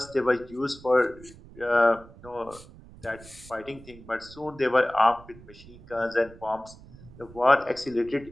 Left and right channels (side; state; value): right; noise; rumble, 20 dB below the sound